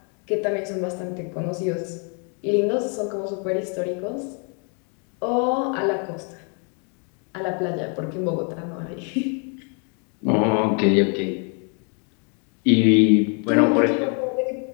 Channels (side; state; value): right; quieter; 39.0 dB